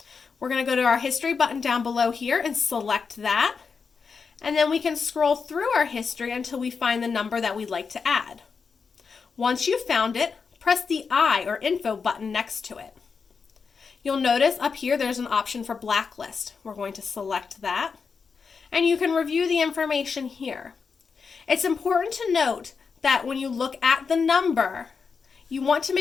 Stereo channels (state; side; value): quieter; right; 5.4 dB